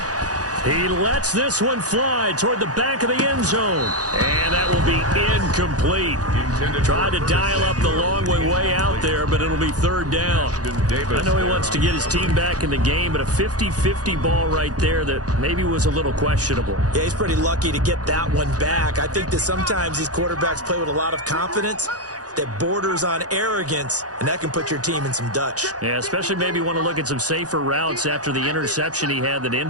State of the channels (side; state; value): left; late; 0.67 ms